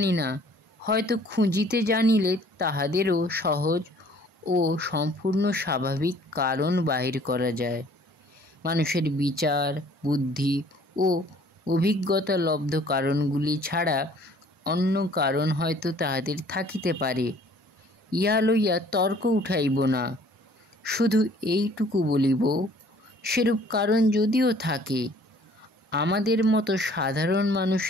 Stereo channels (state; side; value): normal; both; correlation 0.55